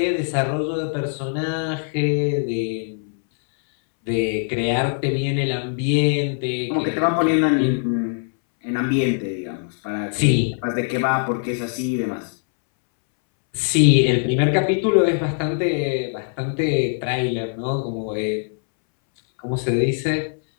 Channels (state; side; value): silent; right; 64 dB below the other